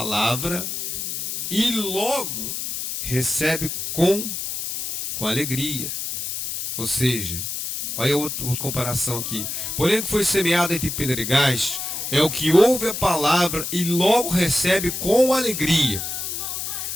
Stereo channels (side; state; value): left; noise; hiss, 4 dB below the sound